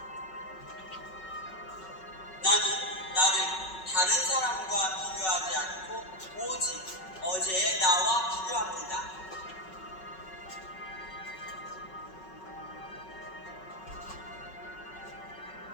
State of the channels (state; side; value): late; right; 5.4 ms